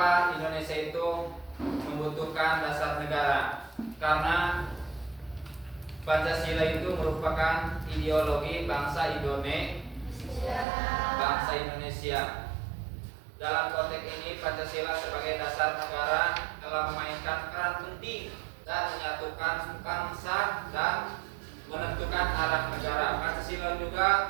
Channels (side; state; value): left; drops out; at 10.7 s